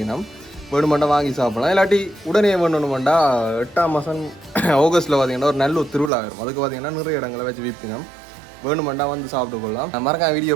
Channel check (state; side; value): drops out; left; at 6.1 s